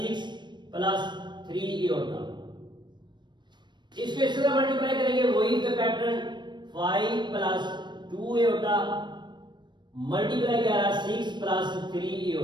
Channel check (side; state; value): left; late; 0.22 ms